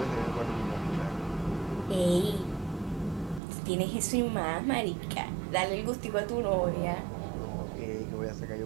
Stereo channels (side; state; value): left; drops out; at 3.4 s